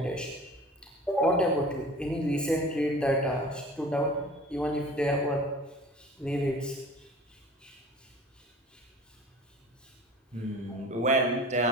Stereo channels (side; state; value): both; normal; correlation 0.42